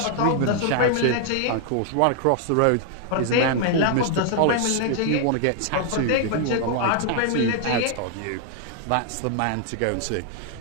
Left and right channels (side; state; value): both; different; correlation 0.00